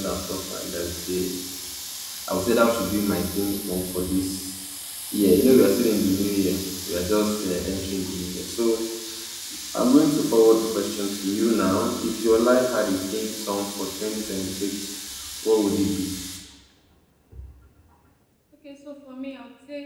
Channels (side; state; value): both; identical; correlation 1.00